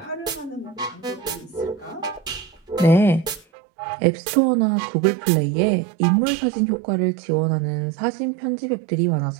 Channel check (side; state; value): left; drops out; at 3.5 s